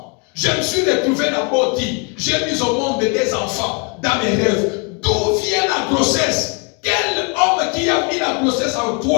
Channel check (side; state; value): right; quieter; 33.9 dB